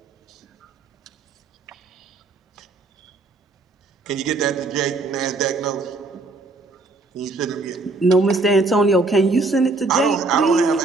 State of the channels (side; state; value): left; quieter; 3.4 dB